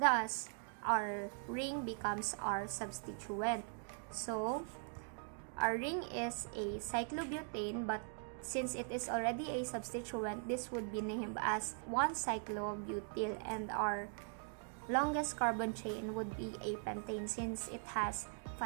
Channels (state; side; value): silent; left; 50 dB below the other